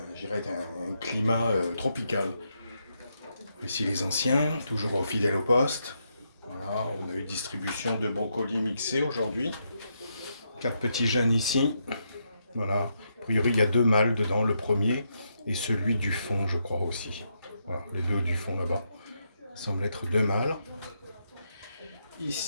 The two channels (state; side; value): inverted; both; correlation -0.80